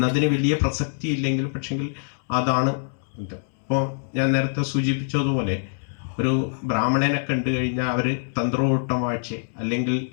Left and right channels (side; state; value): right; silent; 62 dB below the other